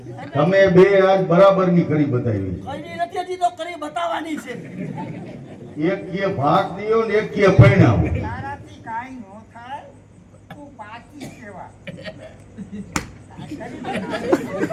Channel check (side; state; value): both; identical; correlation 1.00